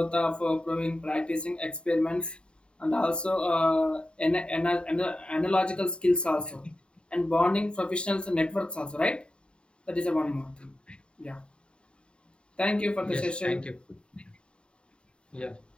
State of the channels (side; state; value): right; late; 0.053 ms